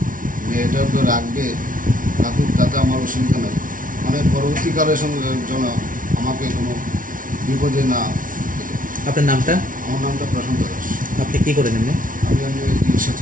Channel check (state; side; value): late; left; 0.39 ms